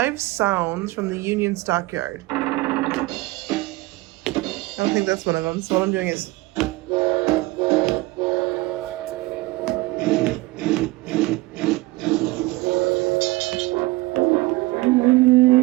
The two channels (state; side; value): quieter; left; 20.8 dB